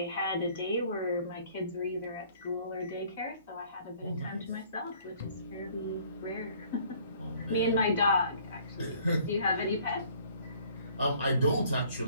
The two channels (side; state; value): both; inverted; correlation -0.57